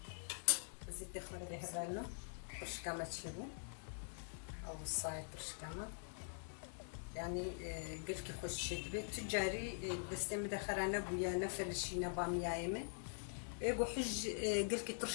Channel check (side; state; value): right; silent; digital silence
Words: زيت خالد هبالنا برشكامة تشبو أو الصايد برشكامة يعني قلت خوش شدري تجاري بس مدخرانا بويا نفلشينا باميا يمه يقول حج قلت